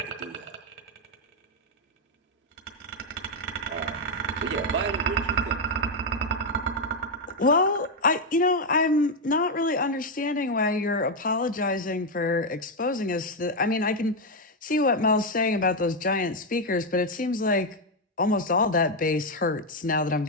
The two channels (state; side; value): normal; both; correlation 0.03